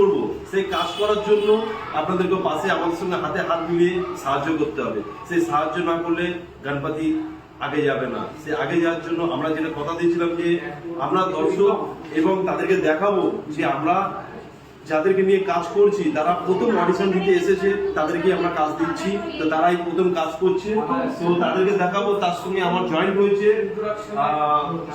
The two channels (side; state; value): both; identical; correlation 1.00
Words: সেই কাজ করার জন্য আপনাদেরকে পাশে আমাদের সঙ্গে হাতে হাত মিলিয়ে সাহায্য করতে হবে। সেই সাহায্য না করলে গণপতি আগে যাবে না। সে আগে যাওয়ার জন্য আমরা যেটা কথা দিয়েছিলাম যে আমরা দর্শক এবং তাদেরকে দেখাবো যে আমরা যাদেরকে নিয়ে কাজ করছি তারা প্রথম অডিশন দিতে এসেছে, তাদেরকে আমরা কাজ দিচ্ছি। তো তারাই প্রথম কাজ করছে, তো তাদেরকে দেখাবো। তার সঙ্গে আমার জয়েন্ট হয়েছে